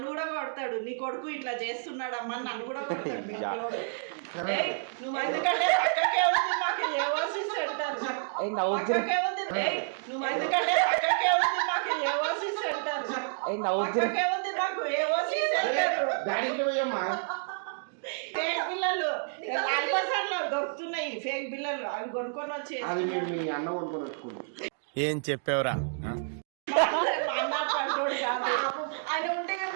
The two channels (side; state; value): left; silent; digital silence